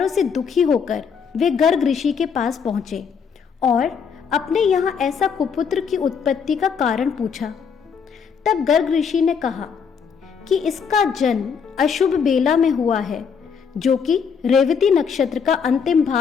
से दुखी होकर वे गर्ग ऋषि के पास पहुंचे और अपने यहाँ ऐसा कुपुत्र की उत्पत्ति का कारण पूछा। तब गर्ग ऋषि ने कहा कि इसका जन्म अशुभ बेला में हुआ है, जो कि रेवती नक्षत्र का अंतिम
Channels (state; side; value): quieter; right; 6.4 dB